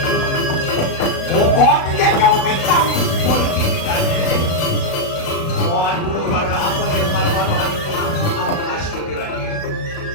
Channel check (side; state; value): right; late; 36 ms